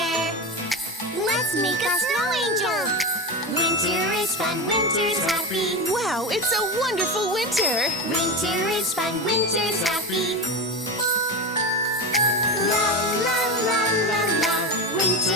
Let's make a snow angel. Winter is fun, winter's happy. Wow, it's a wonderful winter! Winter is fun, winter's happy. La la la la la,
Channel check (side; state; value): both; normal; correlation 0.20